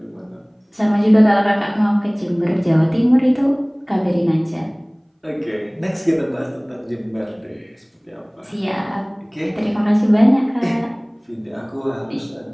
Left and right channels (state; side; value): identical; both; correlation 1.00